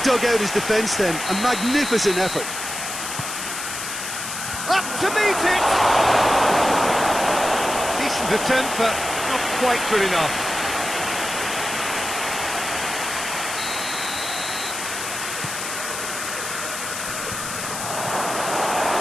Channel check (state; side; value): noise; left; hiss, 6 dB below the sound